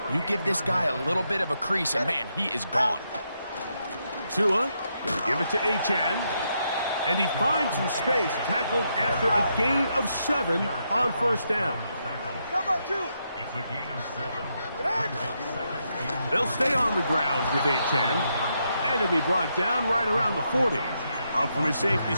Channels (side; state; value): both; inverted; correlation -0.80